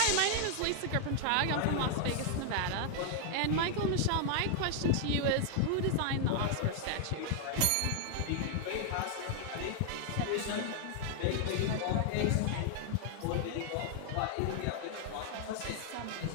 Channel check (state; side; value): different; both; correlation 0.00